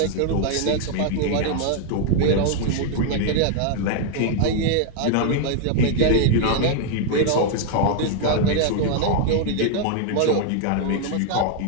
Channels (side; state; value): both; different; correlation 0.00